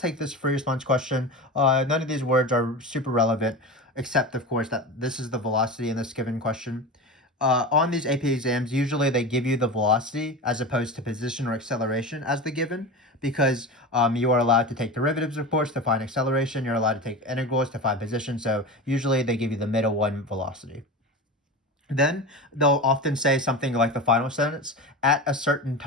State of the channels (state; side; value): normal; both; correlation 0.27